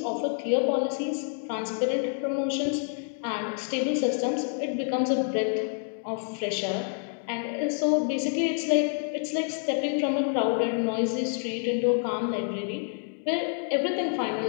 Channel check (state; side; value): silent; right; 59 dB below the other